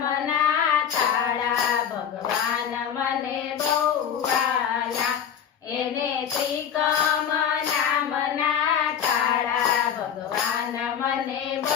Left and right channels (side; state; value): right; quieter; 8.4 dB